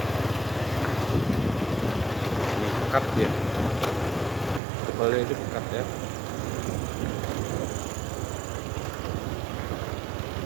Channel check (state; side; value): drops out; left; at 4.6 s